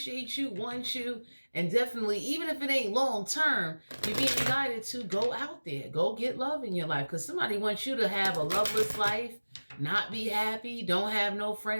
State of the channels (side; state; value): both; inverted; correlation -1.00